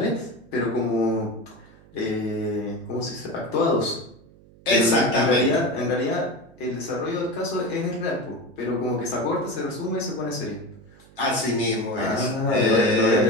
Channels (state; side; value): noise; right; hum, 25 dB below the sound